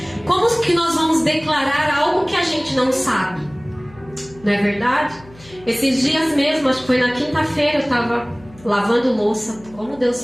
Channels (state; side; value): noise; left; hum, 23 dB below the sound